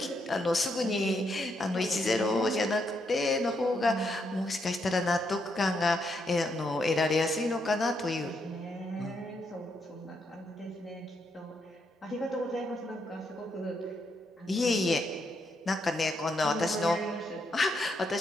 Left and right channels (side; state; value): both; normal; correlation 0.78